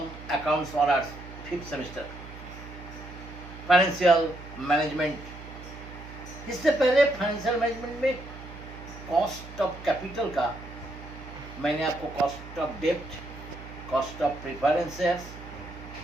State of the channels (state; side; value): noise; right; hum, 14 dB below the sound